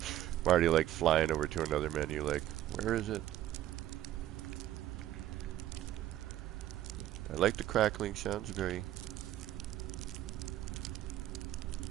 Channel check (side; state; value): left; quieter; 13.0 dB